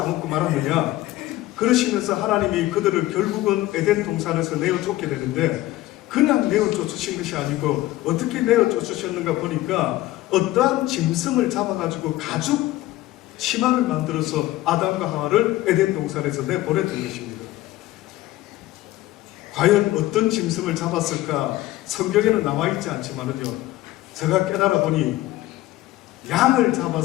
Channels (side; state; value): right; quieter; 16.6 dB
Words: 말았느냐, 그러시면서 하나님이 그들을 결국은 에덴 동산에서 내어 쫓게 되는데 그냥 내어 쫓으신 것이 아니고 어떻게 내어 쫓으셨는가 보니까 어떠한 짐승을 잡아가지고 가죽 치마를 만들어서 아담과 하와를 에덴 동산에서 내보냈던 것입니다. 과연 어떤 짐승을 잡았을까 성경에는 나와 있지 않지만은요 제가 깨달아 보니 양을